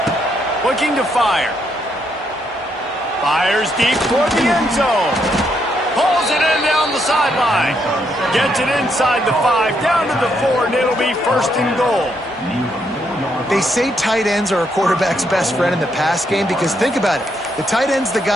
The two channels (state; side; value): normal; both; correlation 0.76